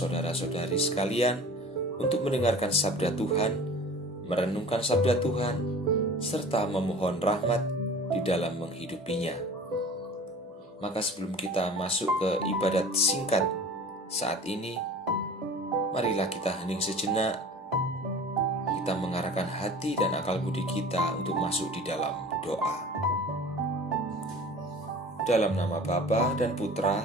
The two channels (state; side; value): normal; both; correlation 0.42